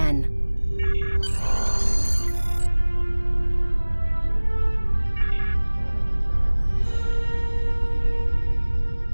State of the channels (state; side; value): inverted; both; correlation -1.00